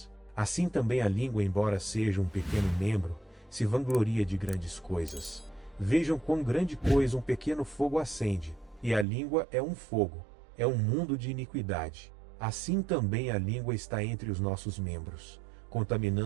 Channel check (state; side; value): drops out; left; at 9.1 s